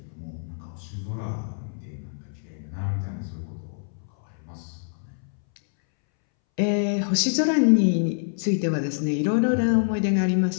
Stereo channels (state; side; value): silent; right; 61 dB below the other